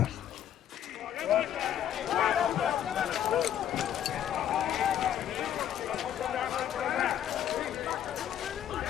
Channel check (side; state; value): right; quieter; 10.4 dB